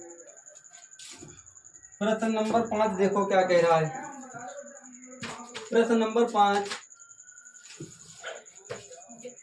प्रश्न नंबर 5 देखो क्या कह रहा है। प्रश्न नंबर 5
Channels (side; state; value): both; identical; correlation 1.00